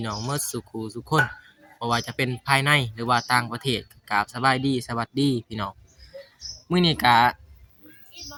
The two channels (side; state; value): both; identical; correlation 1.00